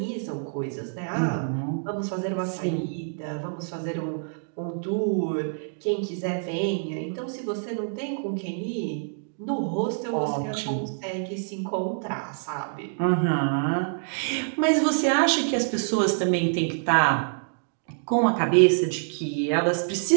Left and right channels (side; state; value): left; silent; digital silence